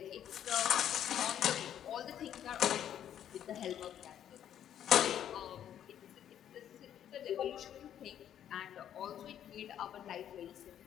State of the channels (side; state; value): right; quieter; 10.2 dB